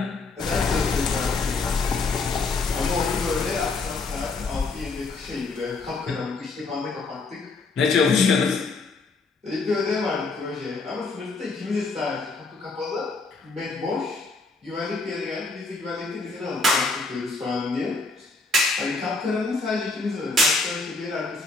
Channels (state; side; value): quieter; right; 3.8 dB